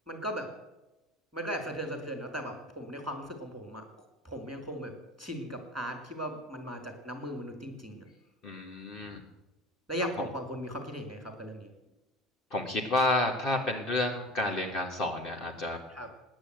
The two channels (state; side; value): normal; both; correlation 0.36